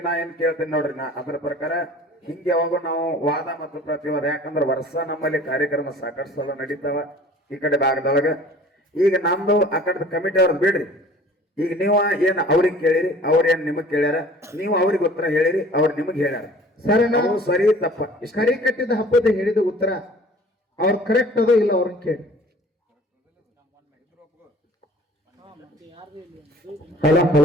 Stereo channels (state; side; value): normal; both; correlation 0.47